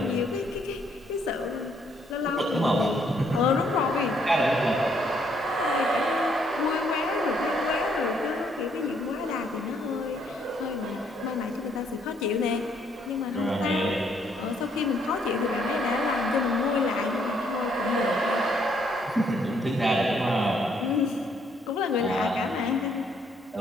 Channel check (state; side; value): normal; both; correlation 0.69